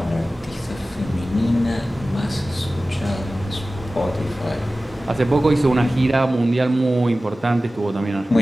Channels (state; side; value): normal; both; correlation 0.96